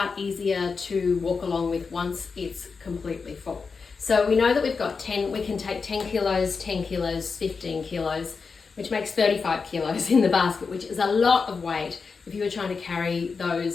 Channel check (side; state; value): right; quieter; 5.0 dB